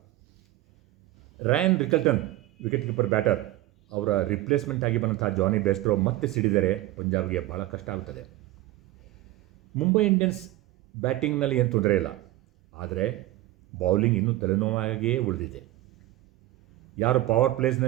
Ryan Rickelton wicket keeper batter, ಅವರ ರಿಪ್ಲೇಸ್ಮೆಂಟ್ ಆಗಿ ಬಂದಂಥ ಜಾನಿ ಬೇಸ್ಟ್ರೋ ಮತ್ತೆ ಸಿಡಿದರೆ ಪಂಜಾಬ್ಗೆ ಭಾಳ ಕಷ್ಟ ಆಗುತ್ತದೆ. ಮುಂಬೈ ಇಂಡಿಯನ್ಸ್ ಬ್ಯಾಟಿಂಗ್ನಲ್ಲಿ ಏನು ತೊಂದರೆ ಇಲ್ಲ, ಆದರೆ ಬೌಲಿಂಗ್ ಇನ್ನೂ ತಲೆನೋವಾಗಿಯೇ ಉಳಿದಿದೆ. ಯಾರು ಪವರ್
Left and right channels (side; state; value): left; quieter; 16.3 dB